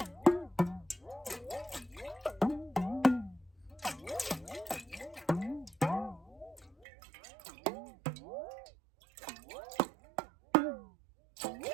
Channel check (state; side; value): drops out; left; at 6.9 s